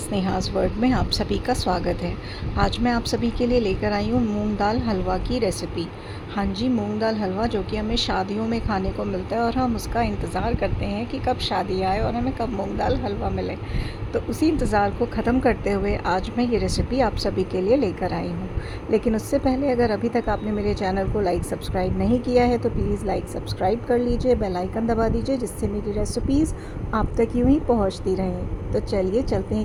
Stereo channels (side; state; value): both; identical; correlation 1.00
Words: world में आप सभी का स्वागत है। आज मैं आप सभी के लिए लेकर आई हूँ मूंग दाल हलवा की रेसिपी। हाँ जी, मूंग दाल हलवा जो कि हमें शादियों में खाने को मिलता है और हम उसका इंतज़ार करते हैं कि कब शादी आए और हमें कब मूंग दाल हलवा मिले। तो उसी इंतज़ार को ख़त्म करते हुए आज मैं ये रेसिपी आप सभी के लिए लेकर आई हूँ। लेकिन उससे पहले अगर अभी तक आपने मेरे चैनल को लाइक सब्सक्राइब नहीं किया है तो प्लीज़ लाइक सब्सक्राइब कर लीजिए, बेल आइकन दबा दीजिए, जिससे मेरी रेसिपीज़ आप तक यूँ ही पहुँचती रहें। तो चलिए चलते